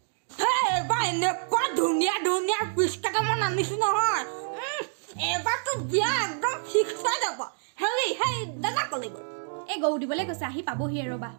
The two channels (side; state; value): left; silent; digital silence